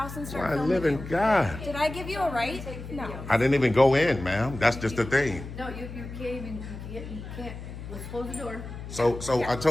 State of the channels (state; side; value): noise; left; hum, 10 dB below the sound